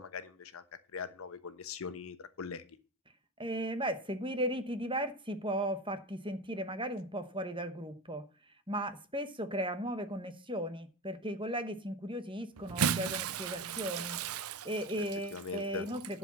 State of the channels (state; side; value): normal; both; correlation 0.25